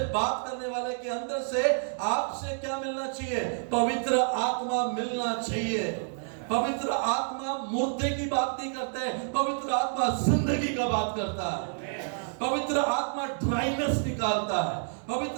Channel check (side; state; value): left; silent; digital silence